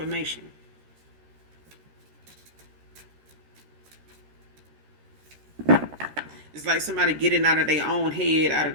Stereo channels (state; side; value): late; left; 13 ms